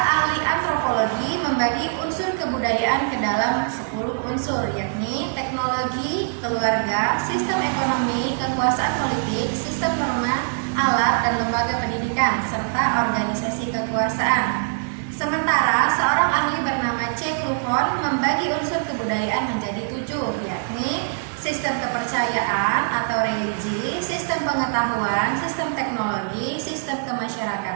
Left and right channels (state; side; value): silent; left; digital silence